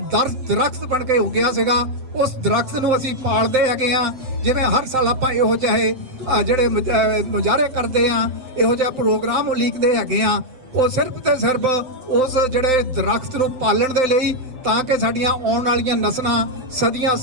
ਦਰਖਤ ਬਣ ਕੇ ਉੱਗਿਆ ਸੀਗਾ। ਉਸ ਦਰਖਤ ਨੂੰ ਅਸੀਂ ਪਾਲਦੇ ਹੈਗੇ ਆ। ਜਿਵੇਂ ਹਰ ਸਾਲ ਆਪਾਂ ਇਹੋ ਜਿਹੇ ਜਿਹੜੇ ਮੁਜ਼ਾਹਰੇ ਕਰਦੇ ਆ, ਇਹੋ ਜਿਹਾ ਪ੍ਰੋਗਰਾਮ ਉਲੀਕਦੇ ਹੈਗੇ ਆ, ਉਹ ਸਿਰਫ ਤੇ ਸਿਰਫ ਉਸ ਜਿਹੜੇ ਦਰਖਤ ਨੂੰ ਪਾਲਣ ਦੇ ਲਈ, ਤਾਂ ਕਿ ਸਾਡੀਆਂ ਆਉਣ ਵਾਲੀਆਂ ਨਸਲਾਂ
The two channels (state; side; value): late; left; 7.7 ms